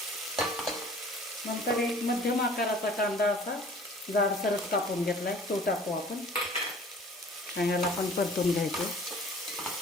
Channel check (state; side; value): normal; both; correlation 0.49